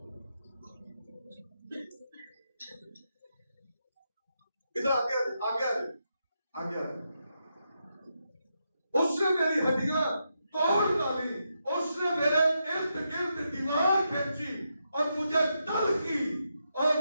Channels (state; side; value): inverted; both; correlation -0.84